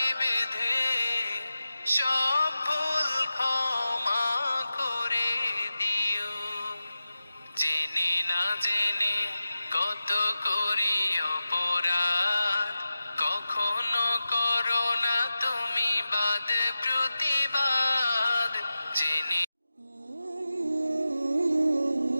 বেঁধে সব ভুল ক্ষমা করে দিও। জেনে না জেনে কত করি অপরাধ, কখনো করো না তুমি বাদ প্রতিবাদ। জেনে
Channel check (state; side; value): inverted; both; correlation -0.93